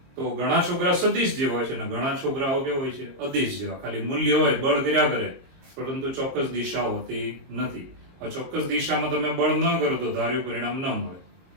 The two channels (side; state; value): left; late; 22 ms